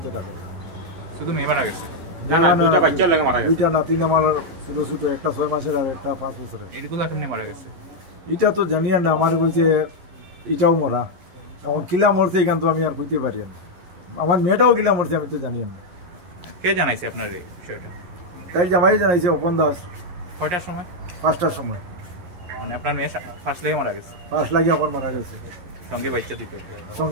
থাকে। শুধু মেয়ে মারা গেছে? দুইটা বাচ্চা লাগে মারা গেছে। দুইটা নাতিন আমার ছোট ছোট, একটা 6 মাসের আর একটা 5 বছরের। এগুলা কেমনে মারা গেছে? এটা তো জানিয়ে না, আমার কইছে এটাও মরা। এখন কিলা মরছে এখান তো আমি আর কইতে পারি না। আমার মেয়েটাও কিলা মরছে আমি তো জানি না। কে জানাইছে আপনার এই বিষয়টা? তাই জামাই জানাইছে অপন দাস। কয়টার সময়? 5টার সময়। মানে আপনার মেয়ে ফার্স্ট লাগে মারা গেছে? ফার্স্ট লাগে এখন মারা গেছে। সঙ্গে বাচ্চা দুইটা?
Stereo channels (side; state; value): left; late; 11 ms